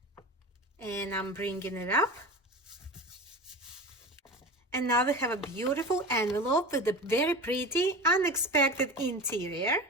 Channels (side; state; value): both; normal; correlation 0.30